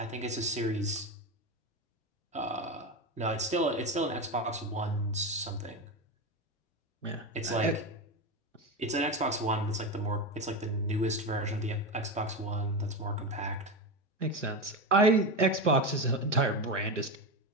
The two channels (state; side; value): normal; both; correlation 0.18